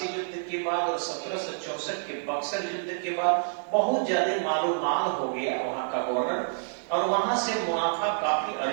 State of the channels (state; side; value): silent; left; digital silence